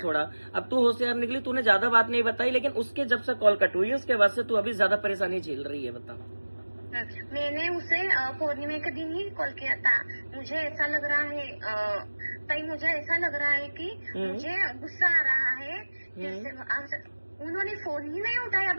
अब तू होशियार निकली, तूने ज्यादा बात नहीं बताई, लेकिन उसके जब से कॉल कट हुई है उसके बाद से तू अभी ज्यादा परेशानी झेल रही है, बता। मैंने उसे पूर्णिमा के दिन ही कॉल किया था। मुझे ऐसा लग रहा है ताई, मुझे ऐसा लग रहा है कि मुझे गुस्सा आ रहा है। जैसे उन्होंने फोन ही नहीं उठाया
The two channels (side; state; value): both; inverted; correlation -1.00